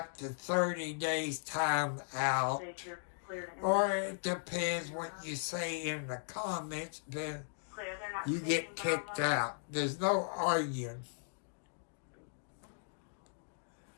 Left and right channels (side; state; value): right; silent; digital silence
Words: to 30 days time out. Or it depends what you say in the comments, then you get kicked out. There's no arguing.